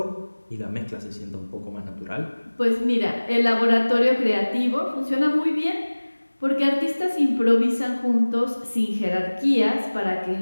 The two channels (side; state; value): both; inverted; correlation -1.00